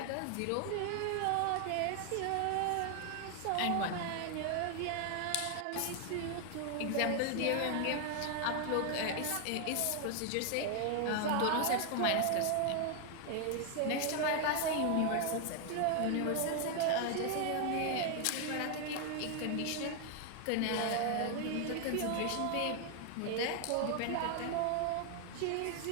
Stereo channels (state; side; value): different; both; correlation 0.00